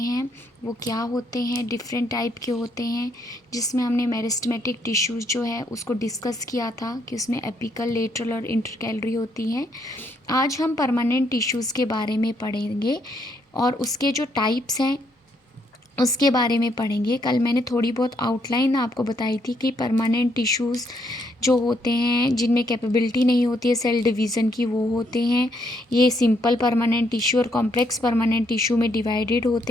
वो क्या होते हैं, डिफरेंट टाइप के होते हैं। जिसमें हमने मेरिस्टेमेटिक टिश्यूज़ जो है उसको डिस्कस किया था कि उसमें एपिकल, लेटरल और इंटरकैलरी होती हैं। आज हम परमानेंट टिश्यूज़ के बारे में पढ़ेंगे और उसके जो टाइप्स हैं उसके बारे में पढ़ेंगे। कल मैंने थोड़ी बहुत आउटलाइन आपको बताई थी कि परमानेंट टिश्यूज़ जो होते हैं जिनमें कैपेबिलिटी नहीं होती है सेल डिवीज़न की, वो होते हैं। ये सिंपल परमानेंट टिश्यू और कॉम्प्लेक्स परमानेंट टिश्यू में डिवाइडेड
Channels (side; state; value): both; normal; correlation 0.73